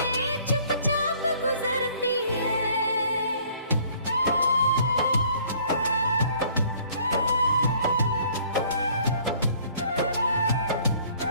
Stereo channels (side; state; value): both; inverted; correlation -0.58